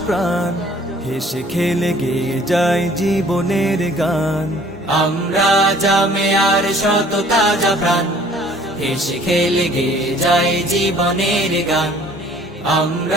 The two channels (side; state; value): both; normal; correlation 0.55